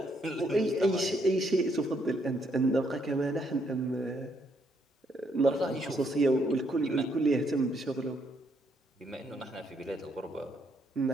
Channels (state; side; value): normal; both; correlation 0.73